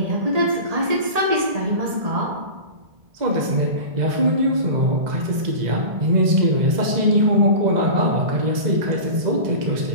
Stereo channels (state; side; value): late; left; 1.8 ms